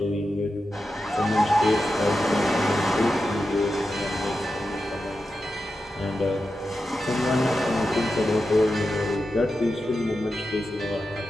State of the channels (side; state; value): both; normal; correlation 0.90